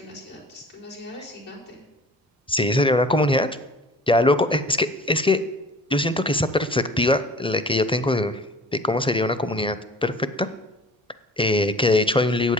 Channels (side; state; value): both; normal; correlation 0.46